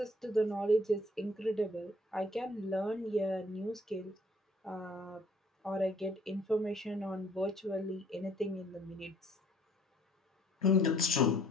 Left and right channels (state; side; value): normal; both; correlation 0.60